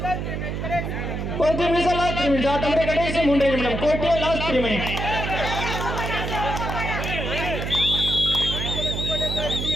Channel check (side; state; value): right; noise; hum, 3 dB below the sound